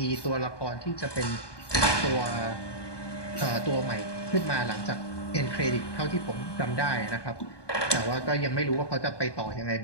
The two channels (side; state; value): right; late; 1.2 ms